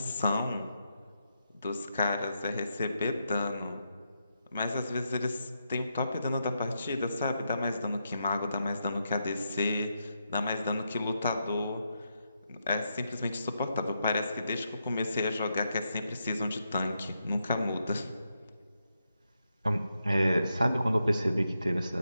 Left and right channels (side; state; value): both; inverted; correlation -0.83